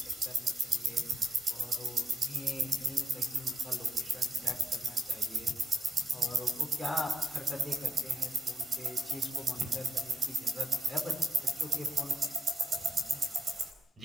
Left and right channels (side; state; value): both; normal; correlation 0.79